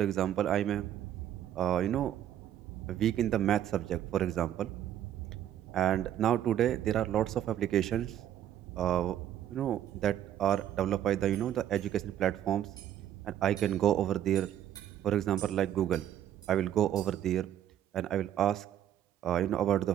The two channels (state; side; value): quieter; left; 11.1 dB